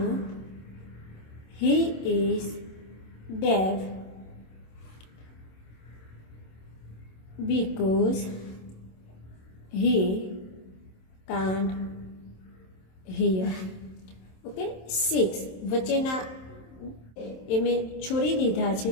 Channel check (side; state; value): right; late; 27 ms